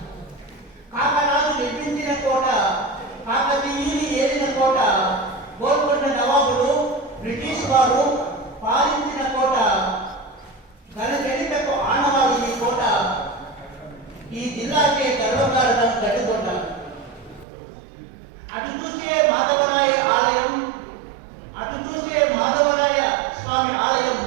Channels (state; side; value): drops out; left; at 17.4 s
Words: కాకరాజు నిర్మించిన కోట కాకతీయుని ఏలిన కోట గోల్కొండ నవాబులు బ్రిటిష్ వారు పాలించిన కోట ఘనచరితకు ఆనవాలు ఈ కోట ఈ జిల్లాకే గర్వకారణం గడ్డికోట అటు చూసే మాధవరాయ ఆలయం అటు చూసే మాధవరాయ స్వామి ఆలయం